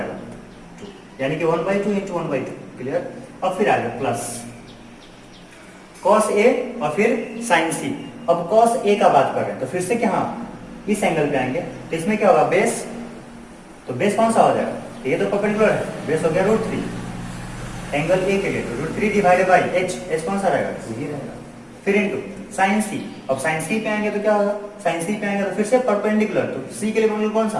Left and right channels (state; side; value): identical; both; correlation 1.00